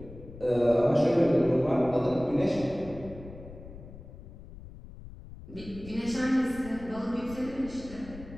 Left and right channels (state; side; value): noise; left; rumble, 15 dB below the sound